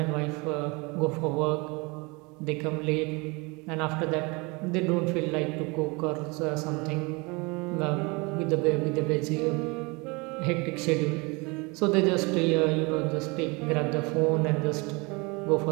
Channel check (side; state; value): left; quieter; 27.5 dB